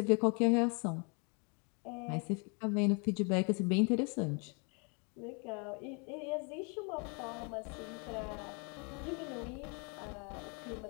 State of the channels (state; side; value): quieter; right; 34.8 dB